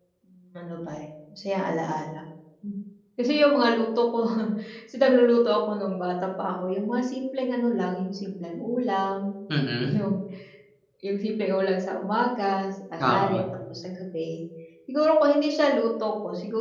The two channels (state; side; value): identical; both; correlation 1.00